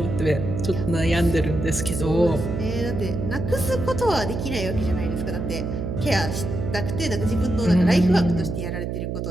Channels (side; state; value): right; noise; hum, 3 dB below the sound